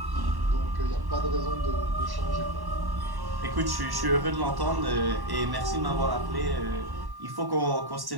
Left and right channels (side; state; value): left; late; 1.1 ms